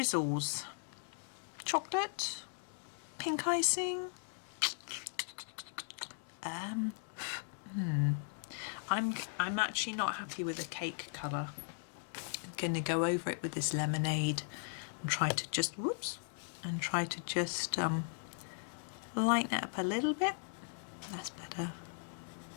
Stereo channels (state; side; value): silent; right; digital silence